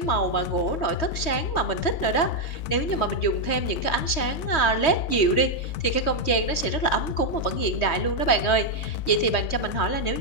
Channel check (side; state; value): right; late; 3.2 ms